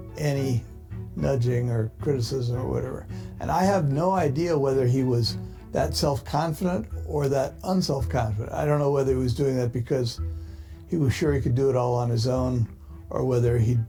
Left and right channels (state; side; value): identical; both; correlation 1.00